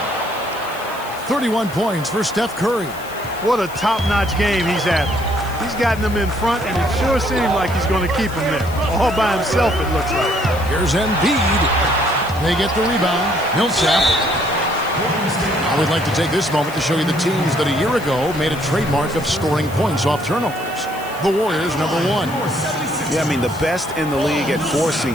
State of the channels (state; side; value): noise; left; hiss, 18 dB below the sound